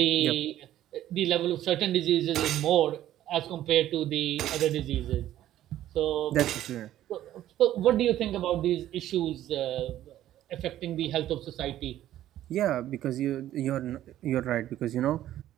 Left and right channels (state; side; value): quieter; left; 12.8 dB